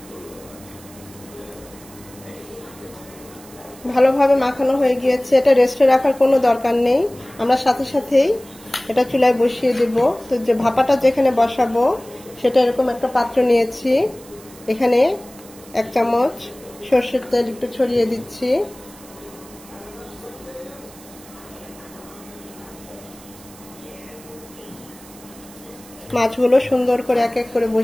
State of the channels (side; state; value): right; noise; hiss, 21 dB below the sound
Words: ভালোভাবে মাখানো হয়ে গিয়েছে। এটা রেস্টে রাখার কোনো দরকার নেই, আমরা সাথে সাথেই এটা চুলায় বসিয়ে দেব। তো যে ভাপাটা যেখানে বসাবো সেটা এরকম একটা পাত্র নিয়েছি। এখানে 1 চামচ সরষের তেল একটু ছড়িয়ে দিচ্ছি। মাছগুলো সুন্দর করে এক এক করে